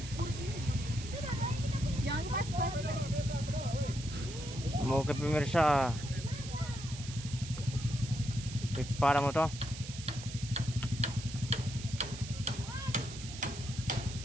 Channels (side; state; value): right; noise; hiss, 12 dB below the sound